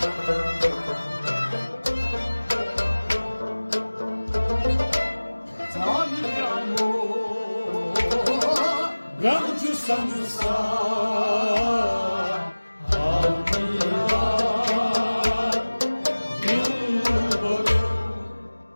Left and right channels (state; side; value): inverted; both; correlation -1.00